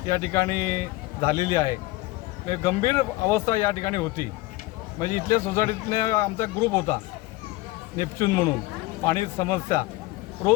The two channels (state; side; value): quieter; right; 19.4 dB